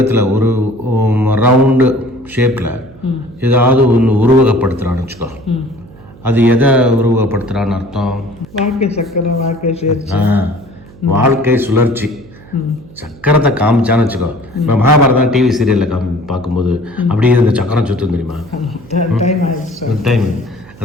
ஒரு ரவுண்டு ஷேப்பில் ஏதாவது ஒன்று உருவகப்படுத்துகிறான்னு வச்சுக்கோ, அது எதை உருவகப்படுத்துகிறான்னு அர்த்தம்? வாழ்க்கை சக்கரம், வாழ்க்கை சுழற்சி. வாழ்க்கை சுழற்சி. சக்கரத்தை காமிச்சான்னு வச்சுக்கோ, இப்போ மகாபாரதம் டிவி சீரியலில் பார்க்கும்போது அப்படியே இந்த சக்கரம் சுற்றும் தெரியுமா? டைம்.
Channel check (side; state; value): right; noise; hum, 22 dB below the sound